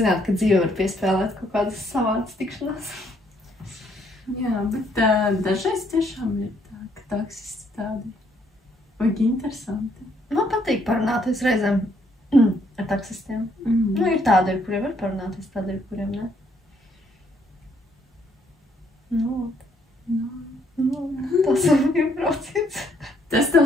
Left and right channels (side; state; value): both; normal; correlation 0.69